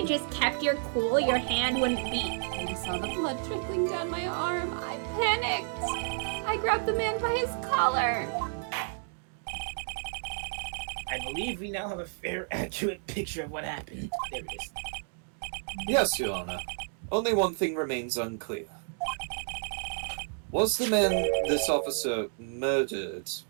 just kept your cool, your hand wouldn't beat. When I saw the blood trickling down my arm, I panicked. I grabbed the man by his collar. I believe we now have a fair, accurate picture of what happened. There it is. Yes, Your Honor. Only one thing remains unclear. Was the man this officer murdered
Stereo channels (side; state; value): left; silent; digital silence